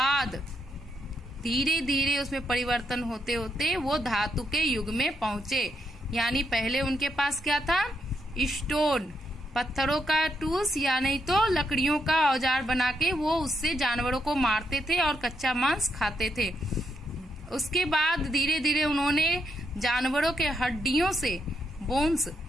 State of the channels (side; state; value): both; normal; correlation 0.79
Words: धीरे धीरे उसमें परिवर्तन होते होते वो धातु के युग में पहुंचे। यानी पहले उनके पास क्या था, स्टोन, पत्थरों का टूल्स, या नहीं तो लकड़ियों का औजार बना के वो उससे जानवरों को मारते थे और कच्चा मांस खाते थे। उसके बाद धीरे धीरे उन्होंने जानवरों के हड्डियों से, बोन्स,